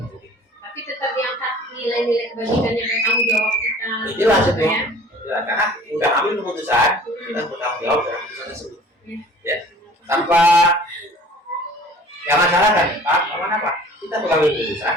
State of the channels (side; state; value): both; normal; correlation 0.48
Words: tapi tetap diangkat nilai-nilai kebajikan yang bertanggung jawab kita. Jelas itu ya. Jelas karena udah ambil keputusan, kita bertanggung jawab dalam keputusan tersebut. Ya. Tanpa jangan salahkan, Pak. Apa? Kita mengambil keputusan,